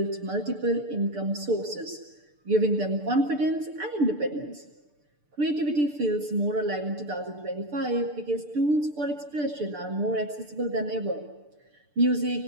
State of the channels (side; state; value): left; late; 6.8 ms